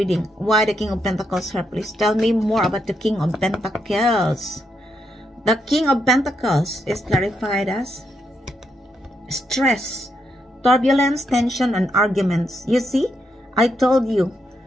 Why the King of Pentacles here? Please tell me more about the King of Pentacles. The King of Pentacles is clarified as stress, turbulence, tension, and arguments. You see, I told you,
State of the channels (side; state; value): both; normal; correlation 0.80